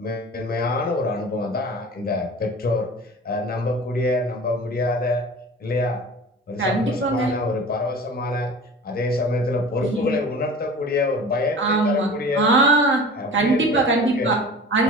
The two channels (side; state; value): both; normal; correlation 0.39